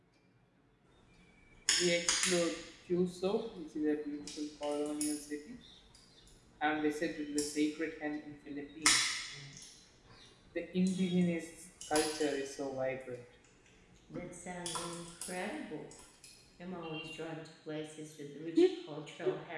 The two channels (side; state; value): both; identical; correlation 1.00